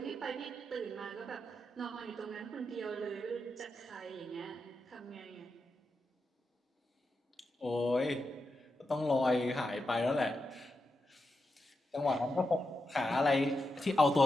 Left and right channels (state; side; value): normal; both; correlation 0.87